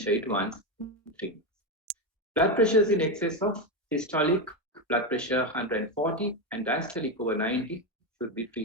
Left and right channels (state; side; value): normal; both; correlation 0.11